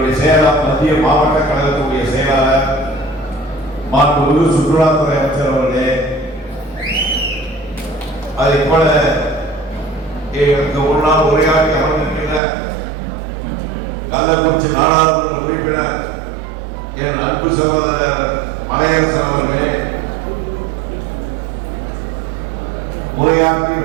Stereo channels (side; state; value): left; drops out; at 12.4 s